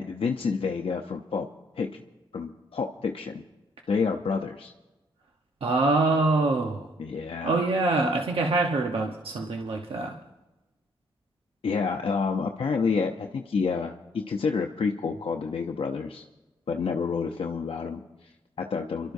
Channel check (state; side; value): normal; both; correlation 0.64